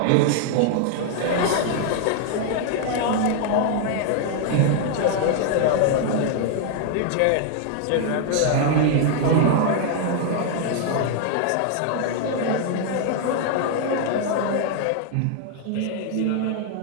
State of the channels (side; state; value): both; different; correlation 0.00